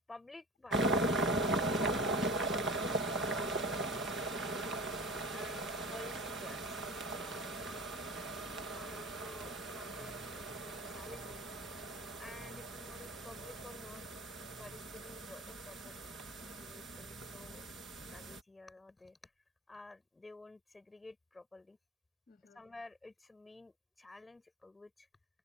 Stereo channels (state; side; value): normal; both; correlation 0.34